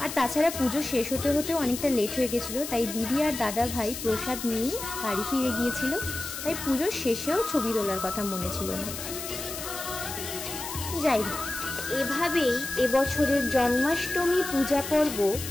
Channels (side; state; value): left; noise; hiss, 8 dB below the sound